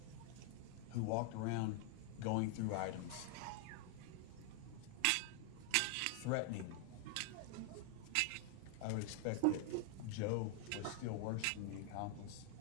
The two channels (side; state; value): both; different; correlation 0.00